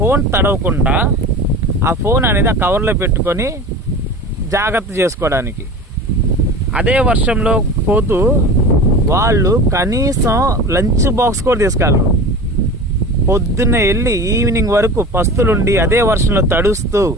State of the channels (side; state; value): both; normal; correlation 0.34